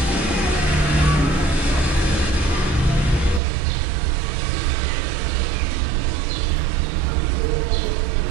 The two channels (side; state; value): left; drops out; at 3.4 s